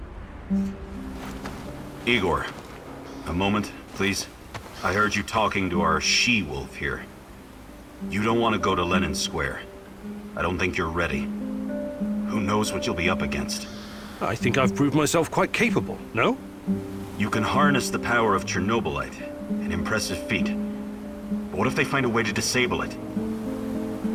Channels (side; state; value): both; identical; correlation 1.00